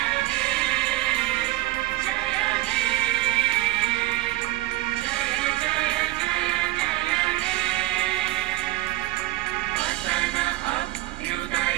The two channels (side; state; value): left; quieter; 18.5 dB